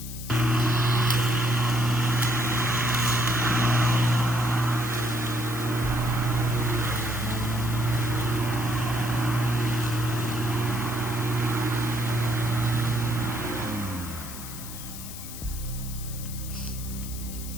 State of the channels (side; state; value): left; noise; hiss, 11 dB below the sound